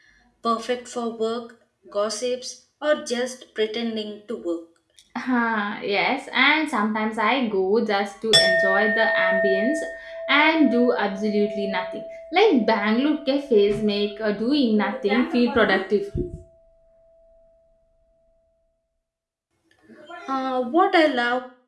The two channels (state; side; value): identical; both; correlation 1.00